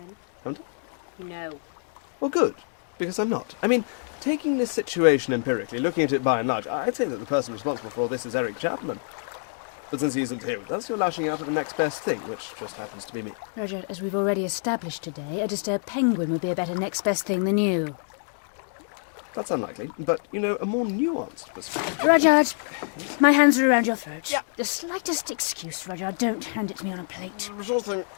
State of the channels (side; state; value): right; silent; 61 dB below the other